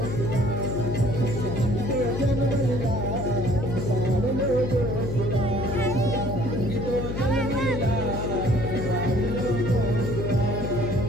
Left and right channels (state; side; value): noise; left; hum, 4 dB below the sound